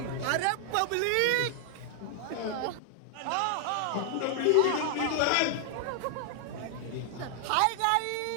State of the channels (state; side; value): different; both; correlation 0.00